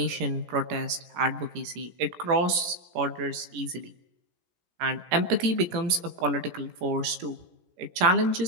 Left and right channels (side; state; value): left; late; 17 ms